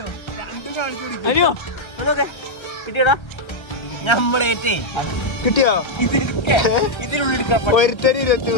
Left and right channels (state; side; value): late; right; 1.3 ms